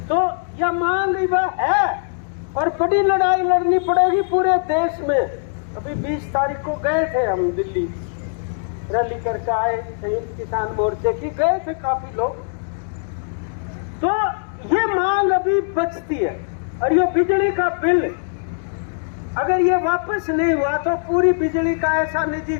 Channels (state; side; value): silent; right; digital silence